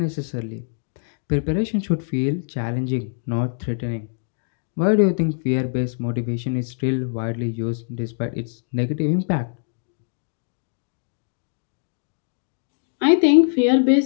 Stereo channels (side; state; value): right; silent; digital silence